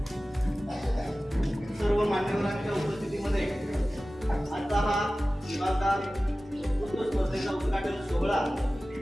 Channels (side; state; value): both; normal; correlation 0.96